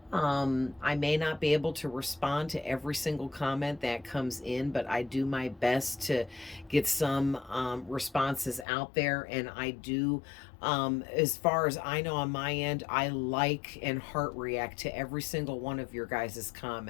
I may not be able to respond to every single comment that comes in, but I do my best to get some responses out there. And I do, as far as I know on my end, I like and heart react to every single one of your guys'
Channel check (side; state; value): right; drops out; at 8.7 s